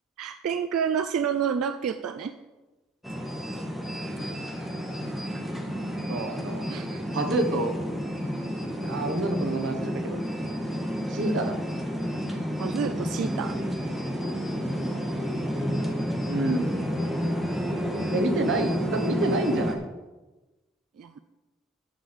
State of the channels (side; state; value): both; normal; correlation 0.61